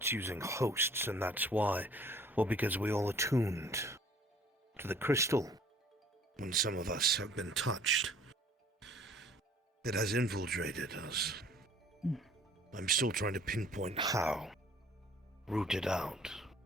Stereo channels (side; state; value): both; normal; correlation 0.54